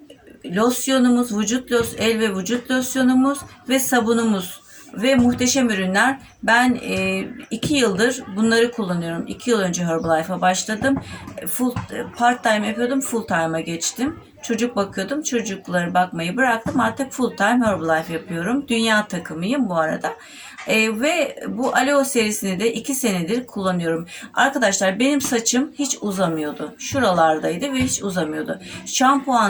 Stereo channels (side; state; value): both; identical; correlation 1.00